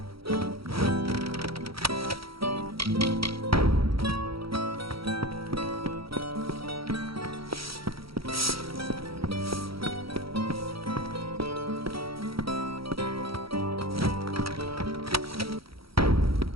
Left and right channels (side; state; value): left; late; 0.75 ms